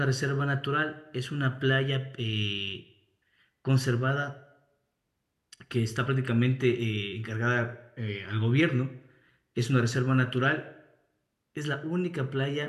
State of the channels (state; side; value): identical; both; correlation 1.00